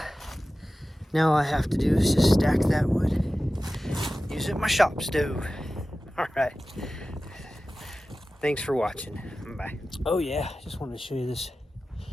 now all I have to do is just stack that wood. Use it in my shop stove. All right. Thanks for watching. Bye. Oh yeah, just wanted to show you this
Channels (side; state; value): both; normal; correlation 0.95